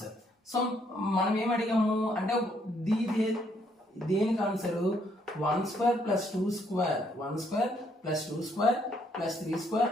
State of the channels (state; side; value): normal; both; correlation 0.70